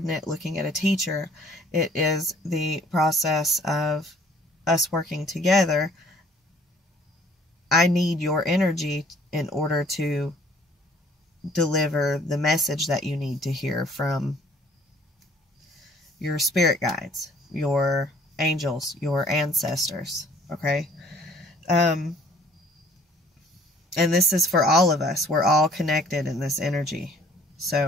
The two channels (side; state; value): both; normal; correlation 0.56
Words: looking at a teacher. It is the process of us working together. I need your energy in order to deliver the message that you need to hear from your spirit guides, your angels, your ancestors. Okay? And this is for all of us. We're all connected in this energy.